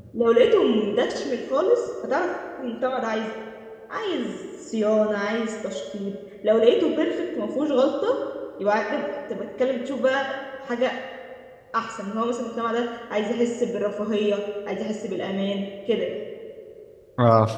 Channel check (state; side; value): identical; both; correlation 1.00